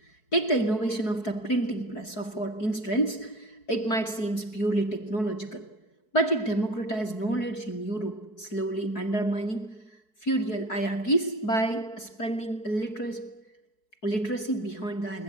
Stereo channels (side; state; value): right; late; 4.6 ms